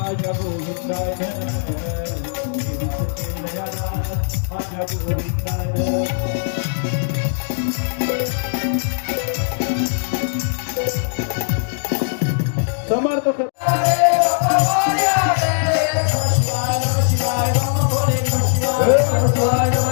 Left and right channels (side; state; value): right; silent; digital silence